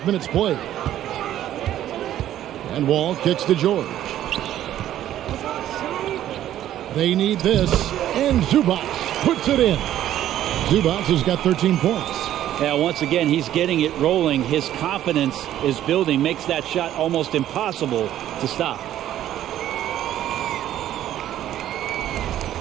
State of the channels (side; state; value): left; quieter; 12.2 dB